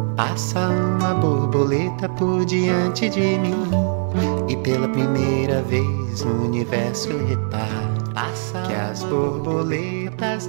Passa uma borboleta por diante de mim, e pela primeira vez no universo reparo que as borboletas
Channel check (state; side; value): silent; left; 55 dB below the other